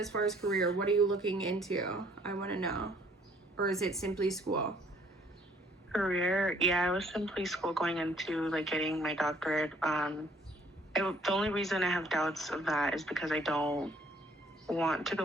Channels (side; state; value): both; normal; correlation 0.61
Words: far as career? What are you looking into? I want to know. Or is it simply school? Career, yeah, I was simply school going into like getting my doctorate. The only reason I have doubts of that is because I don't want to